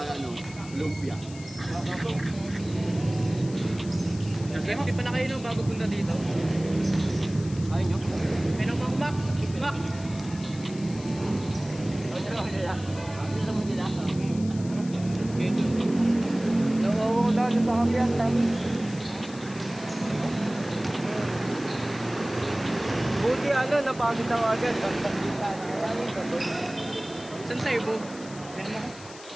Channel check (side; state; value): left; noise; hiss, 18 dB below the sound